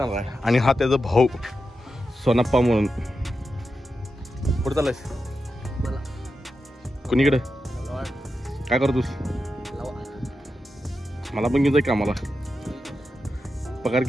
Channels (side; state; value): both; normal; correlation 0.89